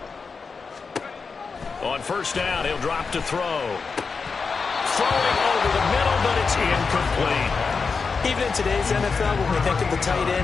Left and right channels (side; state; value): right; quieter; 4.9 dB